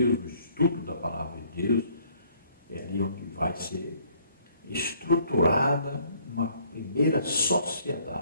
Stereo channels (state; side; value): inverted; both; correlation -0.62